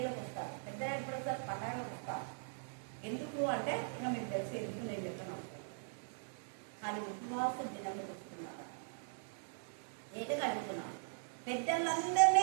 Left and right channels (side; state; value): left; silent; digital silence